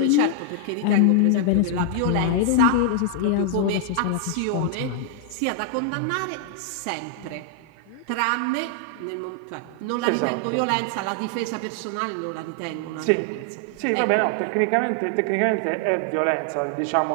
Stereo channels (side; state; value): both; different; correlation 0.00